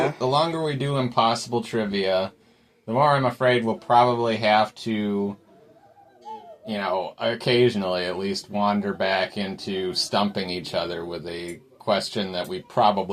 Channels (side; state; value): both; identical; correlation 1.00